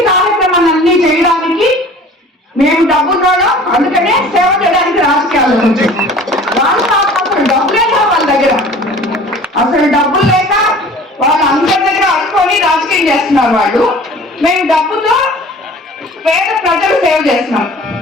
కార్యక్రమాలన్నీ చేయడానికి మేము డబ్బున్నోళ్ళం, అందుకనే సేవ చేయడానికి రాజకీయాల్లో వాళ్ళు అసలు డబ్బులే లేవు వాళ్ళ దగ్గర. అసలు డబ్బులు లేక వాళ్ళు అందరి దగ్గర అనుకొని రాజకీయం చేస్తున్నారు వాళ్ళు. మేము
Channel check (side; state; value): both; normal; correlation 0.46